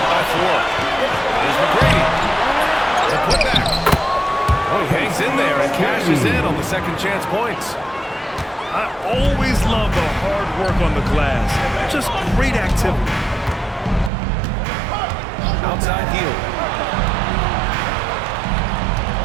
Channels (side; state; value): left; drops out; at 14.1 s